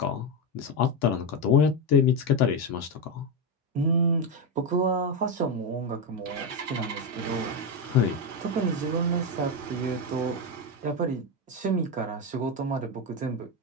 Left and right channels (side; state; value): both; normal; correlation 0.09